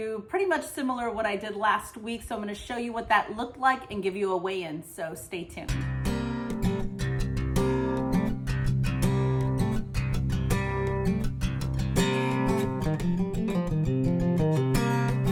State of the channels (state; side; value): identical; both; correlation 1.00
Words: pretty much similar what I did last week. So I'm going to show you what that looked like and give you a weigh-in. So stay tuned.